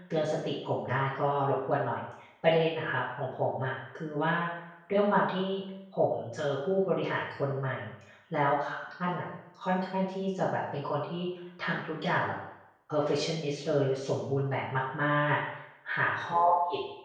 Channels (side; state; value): both; identical; correlation 1.00